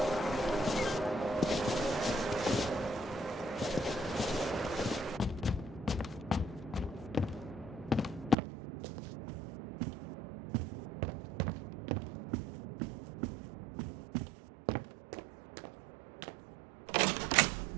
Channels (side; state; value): left; drops out; at 8.3 s